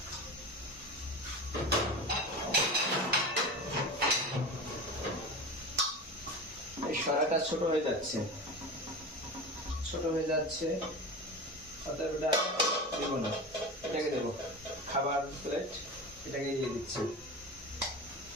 এই সরাটা ছোট হয়ে যাচ্ছে, অতএব এটা দেবো না, এটাকে দেবো খাবার প্লেট,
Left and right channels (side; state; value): both; normal; correlation 0.28